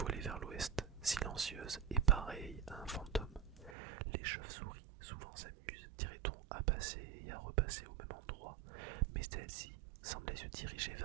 vers l'ouest, silencieuse et pareille à un fantôme. Les chauves-souris souvent s'amusent, dirait-on, à passer et à repasser au même endroit, mais celle-ci semblait se diriger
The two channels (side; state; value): left; drops out; at 3.8 s